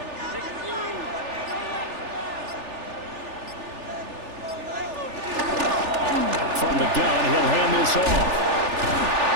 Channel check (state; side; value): late; left; 3.4 ms